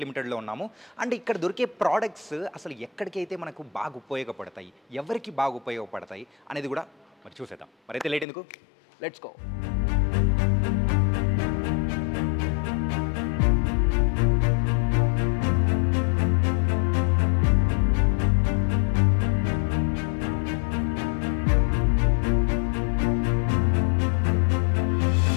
లిమిటెడ్లో ఉన్నాము. అండ్ ఇక్కడ దొరికే ప్రోడక్ట్స్ అసలు ఎక్కడికైతే మనకు బాగా ఉపయోగపడతాయి, ఎవరికి బాగా ఉపయోగపడతాయి అనేది కూడా మరి చూసేద్దాం. మరైతే లేట్ ఎందుకు, లెట్స్ గో.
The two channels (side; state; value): right; drops out; at 8.2 s